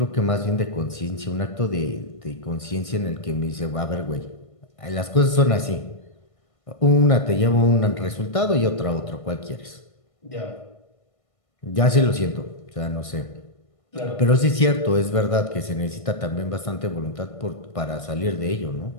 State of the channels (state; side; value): late; right; 1.6 ms